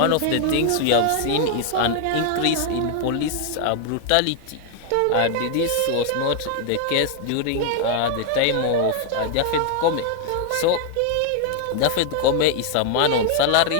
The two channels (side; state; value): both; different; correlation 0.00